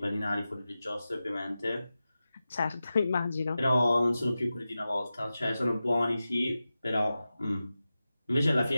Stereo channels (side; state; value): both; inverted; correlation -0.94